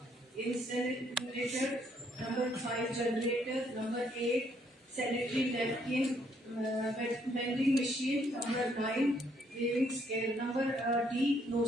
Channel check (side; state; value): both; normal; correlation 0.70